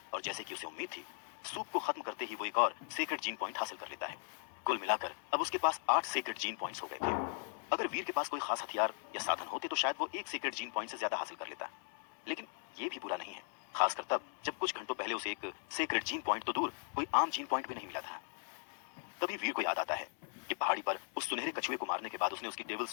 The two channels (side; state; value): right; silent; 52 dB below the other